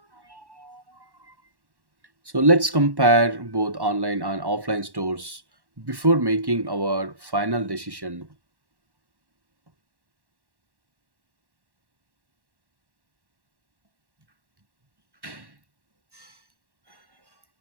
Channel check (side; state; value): left; late; 1.1 ms